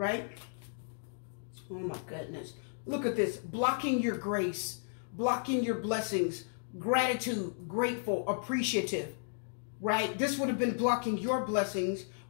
Oh my goodness. Look at this. Blocking your grace, blocking your blessings, gratitude, grateful, appreciative, right? This would have been blocking your blessings,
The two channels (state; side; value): silent; right; digital silence